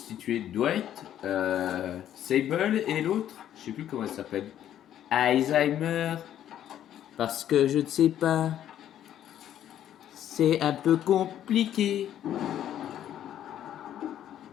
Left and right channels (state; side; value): quieter; right; 11.0 dB